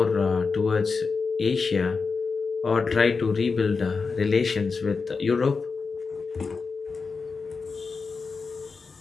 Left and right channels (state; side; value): quieter; right; 4.7 dB